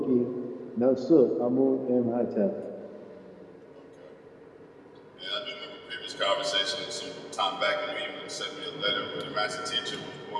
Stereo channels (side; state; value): both; identical; correlation 1.00